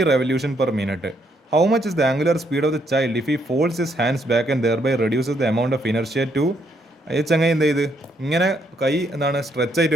revolution per minute. How much is the angular speed of the child if he folds his hands back and thereby reduces the amount of inertia to. ചങ്ങായി എന്ത് ചെയ്ത് ഇങ്ങനെ കൈ എന്താണ് സ്ട്രെച്ച് ആയിട്ട്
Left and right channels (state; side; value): normal; both; correlation 0.73